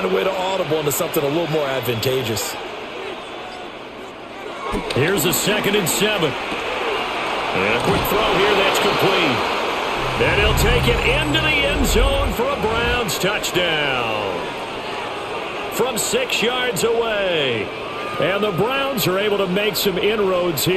a way to audible into something a little more advantageous. Here's a 2nd and 7. And a quick throw here that's complete. And he'll take it into the end zone for a Browns touchdown. From 6 yards away. And the Browns are able to make some inroads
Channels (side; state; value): both; identical; correlation 1.00